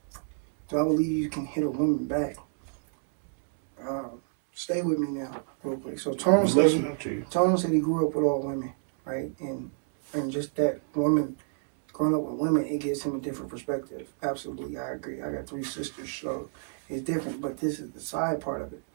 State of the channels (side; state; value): left; silent; digital silence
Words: do I believe you can hit a woman back? stay with me now, real quick. So Tone I'm said, listening to you. Tone said he grew up with all women, right? And just that woman, growing up with women, it gives him a different perspective. Absolutely, I agree. I got 3 sisters, so it's different. But this is the side part of it.